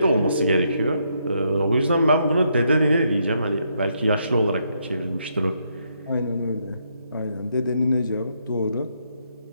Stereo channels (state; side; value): inverted; both; correlation -0.76